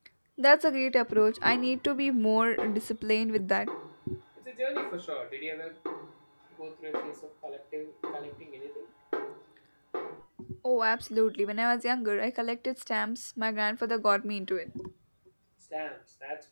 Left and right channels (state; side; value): inverted; both; correlation -1.00